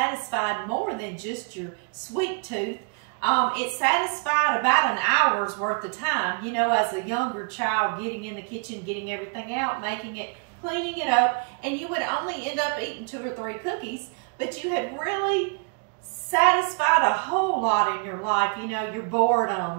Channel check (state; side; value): quieter; left; 36.8 dB